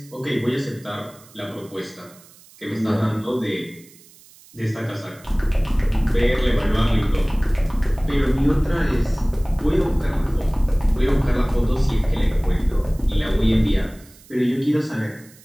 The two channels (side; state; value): right; noise; hiss, 25 dB below the sound